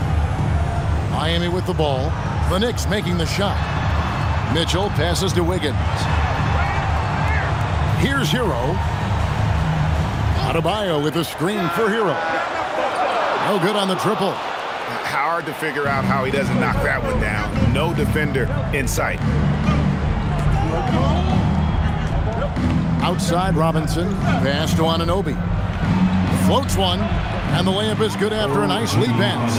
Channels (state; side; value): identical; both; correlation 1.00